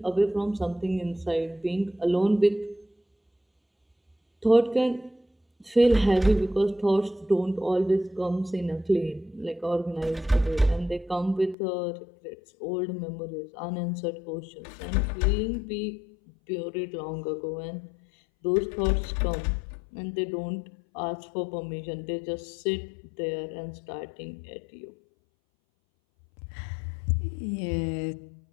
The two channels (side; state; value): right; drops out; at 11.6 s